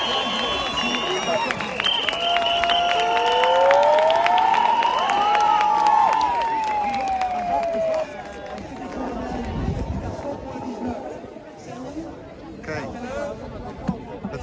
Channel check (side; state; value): both; identical; correlation 1.00